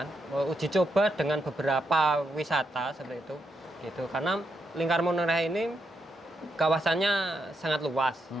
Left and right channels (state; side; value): normal; both; correlation 0.82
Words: coba dengan beberapa wisata seperti itu gitu, karena Lingkar Menoreh ini kawasannya sangat luas,